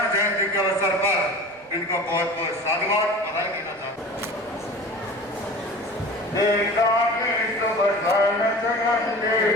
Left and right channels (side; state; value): right; noise; rumble, 29 dB below the sound